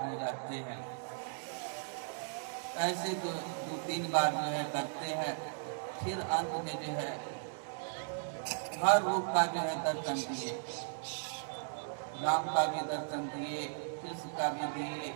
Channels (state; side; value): silent; left; digital silence